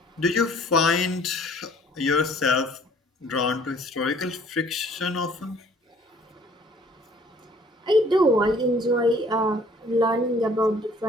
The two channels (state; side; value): normal; both; correlation 0.57